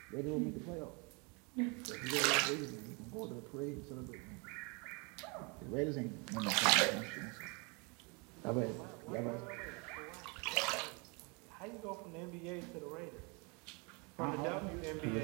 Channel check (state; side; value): quieter; left; 31.2 dB